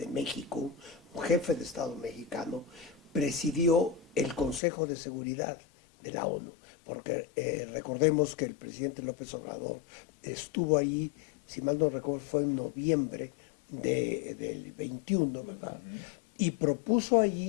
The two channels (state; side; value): drops out; right; at 4.6 s